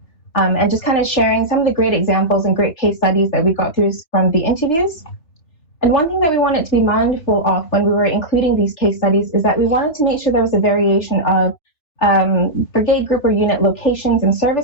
And just kind of sharing some of the great examples and great case studies that we got through from the interviews. And one thing that we wanted to be mindful of when we were including these case studies is that we wanted to make sure there was a variation of brigade group or unit locations and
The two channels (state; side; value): late; right; 3.2 ms